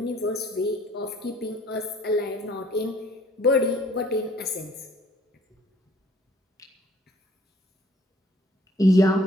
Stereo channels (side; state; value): both; normal; correlation 0.57